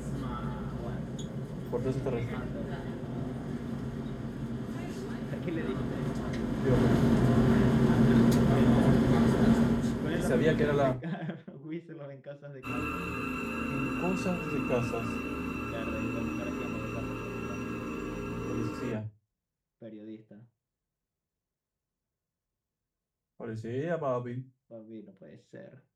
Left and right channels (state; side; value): identical; both; correlation 1.00